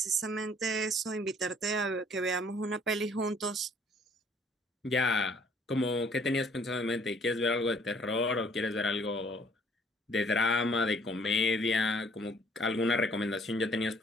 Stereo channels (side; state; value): both; normal; correlation 0.60